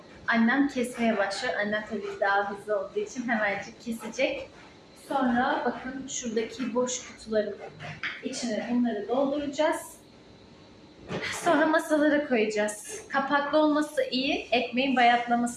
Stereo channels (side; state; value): both; identical; correlation 1.00